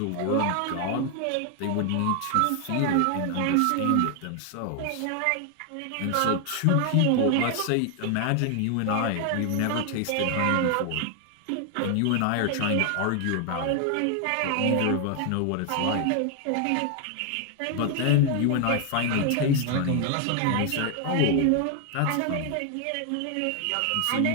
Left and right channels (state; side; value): different; both; correlation 0.00